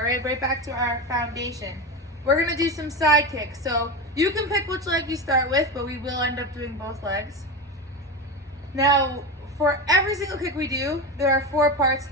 right? Right back to our foundation. We're gonna do some side kicks. So you can pick which leg you start with, but we will end up doing both legs. Now, for every single kick we do, there are 4 parts to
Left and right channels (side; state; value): both; normal; correlation 0.21